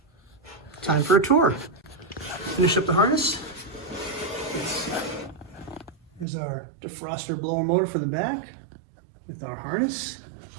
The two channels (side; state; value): left; drops out; at 6.2 s